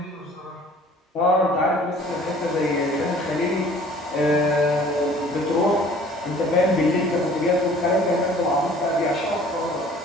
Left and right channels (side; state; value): both; normal; correlation 0.51